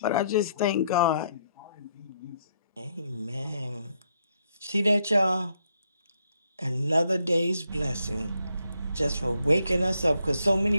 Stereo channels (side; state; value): both; inverted; correlation -0.74